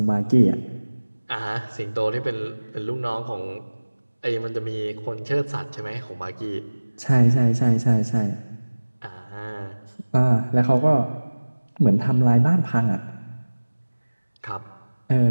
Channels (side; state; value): both; inverted; correlation -1.00